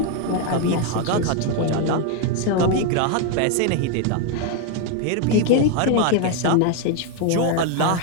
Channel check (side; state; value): both; different; correlation 0.01